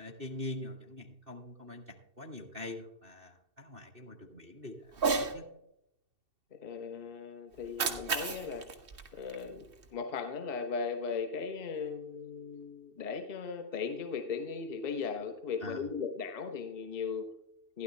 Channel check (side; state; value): left; late; 2.7 ms